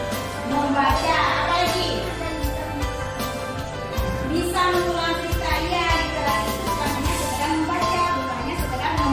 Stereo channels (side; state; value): both; identical; correlation 1.00